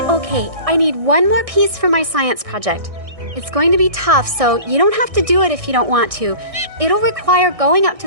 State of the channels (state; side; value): late; left; 1.6 ms